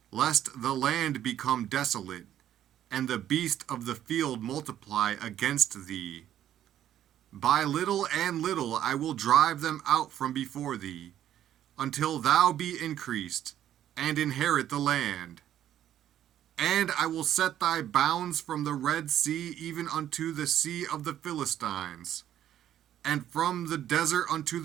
lest the land become desolate, and the beast of the field multiply against thee. By little and little I will drive them out from before thee, until thou be increased, and inherit the land. And I will set thy bounds from the Red Sea even unto the sea of the Philistines, and from the desert unto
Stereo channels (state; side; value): quieter; left; 11.3 dB